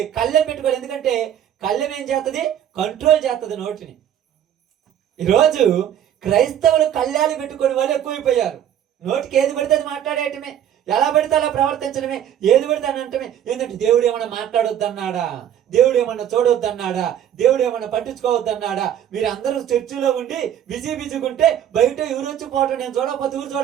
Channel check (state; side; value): quieter; left; 10.2 dB